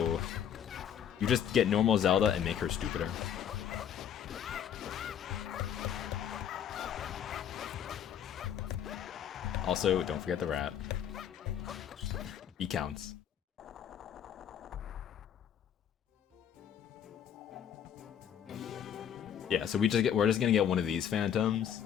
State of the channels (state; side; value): quieter; right; 9.0 dB